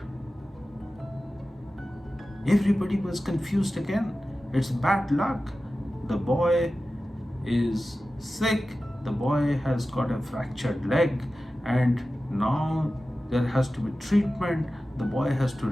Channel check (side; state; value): both; normal; correlation 0.94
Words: Everybody was confused again. It's bad luck. The boy is sick, the boy has got a fractured leg, and now there has to be treatment. The boy has to